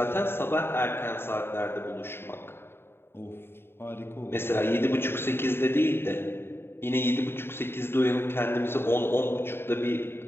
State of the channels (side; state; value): right; late; 0.11 ms